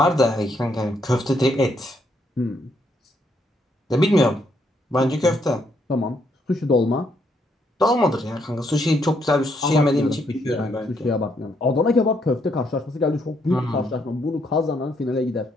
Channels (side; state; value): both; normal; correlation 0.74